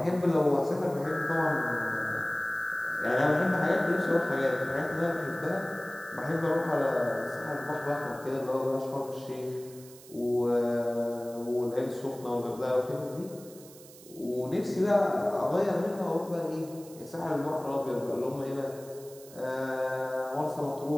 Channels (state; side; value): noise; right; hiss, 20 dB below the sound